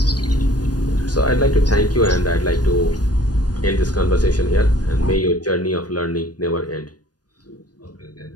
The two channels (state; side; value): late; right; 0.69 ms